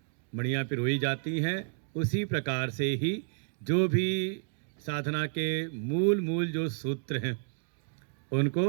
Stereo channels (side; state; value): left; silent; digital silence